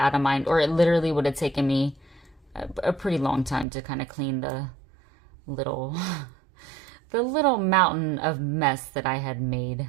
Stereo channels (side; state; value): left; drops out; at 3.7 s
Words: of mind. Or it literally would have taken me a pretty long time to kind of clean the little, the little mountain of mess that I had made.